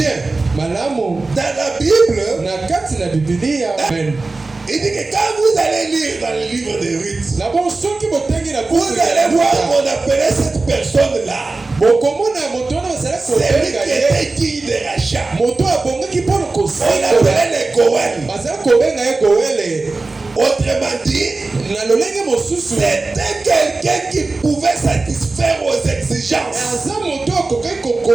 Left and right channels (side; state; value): left; quieter; 3.5 dB